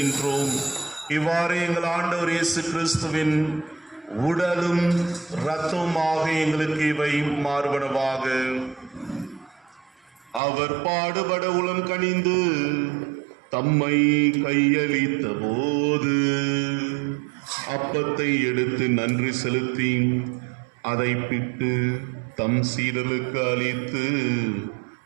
இவ்வாறு எங்கள் ஆண்டவர் இயேசு கிறிஸ்துவின் உடலும் இரத்தமுமாக எங்களுக்கு இவை மாறுபடவாக. அவர் பாடுபட உளம் கனிந்து தம்மை கையளித்த போது அப்பத்தை எடுத்து நன்றி செலுத்தி அதை பிட்டு தம் சீடர்களுக்கு அளித்து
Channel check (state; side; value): drops out; left; at 10.4 s